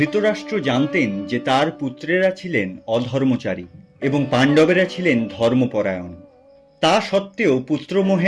জানতেন যে তার পুত্রেরা ছিলেন অধর্মচারী এবং পাণ্ডবেরা ছিলেন ধর্মপরায়ণ। তা সত্ত্বেও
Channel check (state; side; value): identical; both; correlation 1.00